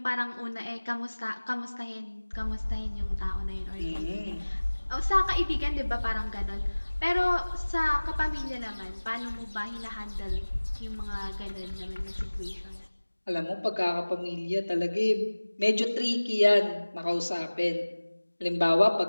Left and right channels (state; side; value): inverted; both; correlation -1.00